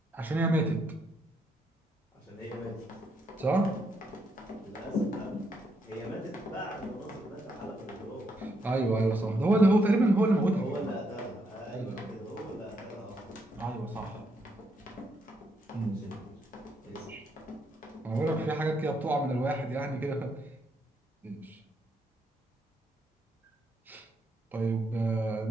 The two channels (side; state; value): both; normal; correlation 0.76